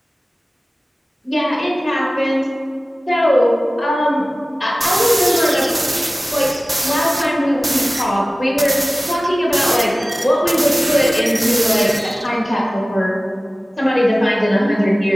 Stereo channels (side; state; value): both; normal; correlation 0.97